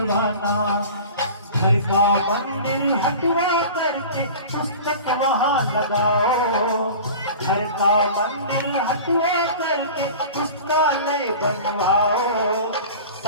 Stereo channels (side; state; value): both; inverted; correlation -0.38